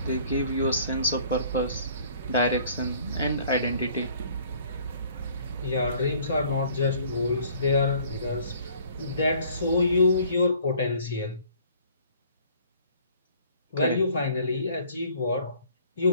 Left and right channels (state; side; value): inverted; both; correlation -0.56